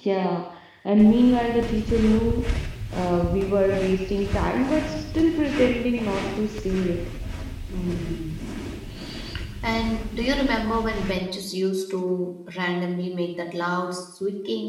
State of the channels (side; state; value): both; identical; correlation 1.00